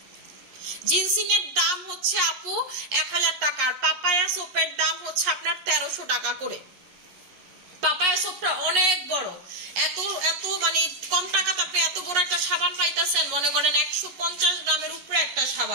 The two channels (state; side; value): late; left; 11 ms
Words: জিনসিং এর দাম হচ্ছে আপু 1000 টাকা, আর পাপায়া সোপের দাম হচ্ছে আপনার 1300 টাকা করে। পাপায়া সোপটা অনেক বড়, এত এত মানে কম টাকাতে আপনি এত বড় একটা সাবান পাইতেছেন, মনে করেন 150 গ্রামের উপরে একটা